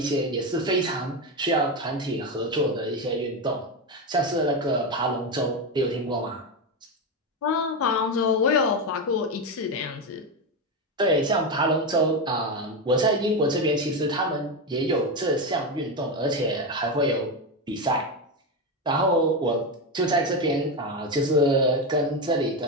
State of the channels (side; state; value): both; normal; correlation 0.12